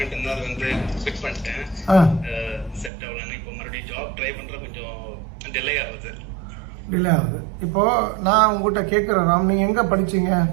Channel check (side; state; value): left; drops out; at 2.9 s